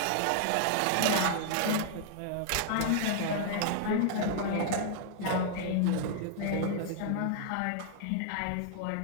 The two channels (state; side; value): different; both; correlation -0.01